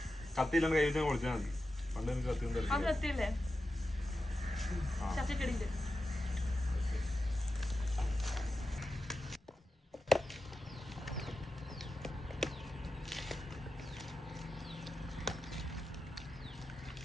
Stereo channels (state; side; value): normal; both; correlation 0.91